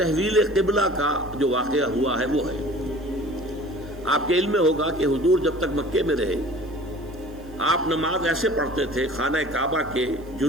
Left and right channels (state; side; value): noise; right; hiss, 29 dB below the sound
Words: قبلہ کا جو واقعہ ہوا ہے وہ ہے، آپ کے علم میں ہوگا کہ حضور جب تک مکے میں رہے آپ نماز ایسے پڑھتے تھے، خانہ کعبہ کے